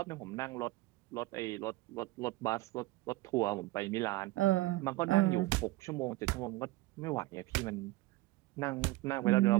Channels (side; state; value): left; quieter; 18.8 dB